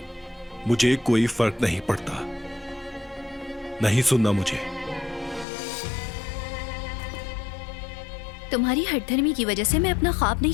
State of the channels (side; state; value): right; drops out; at 5.5 s